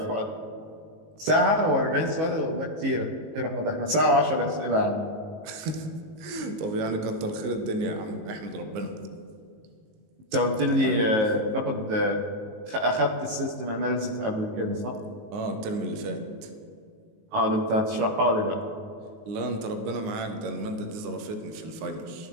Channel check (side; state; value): left; late; 19 ms